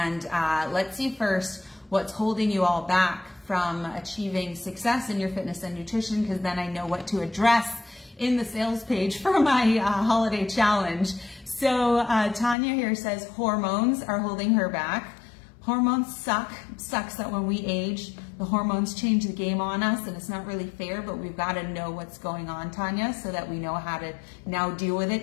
let's see first what's holding you all back from achieving success in your fitness and nutrition, because then I know what to address in the sales page for my holiday challenge. So Tanya here says hormones are holding her back. Hormones suck. Sucks that when we age, the hormones change the game on us, and it's not really fair, but we've got to know what's going on, Tanya, so that we know how to now deal with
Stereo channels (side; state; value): right; drops out; at 12.6 s